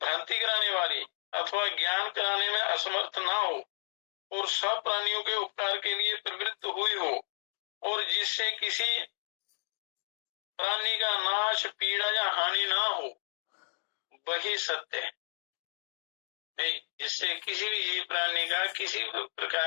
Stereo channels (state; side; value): silent; right; digital silence